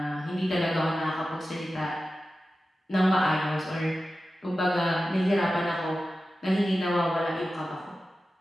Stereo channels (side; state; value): both; normal; correlation 0.94